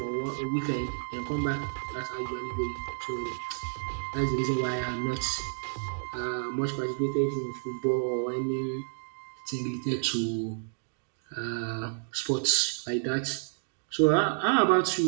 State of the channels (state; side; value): silent; left; digital silence